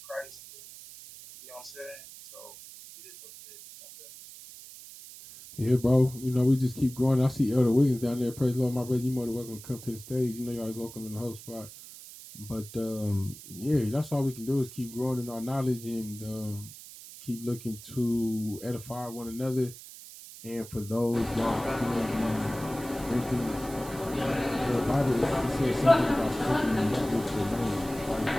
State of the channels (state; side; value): noise; right; hiss, 16 dB below the sound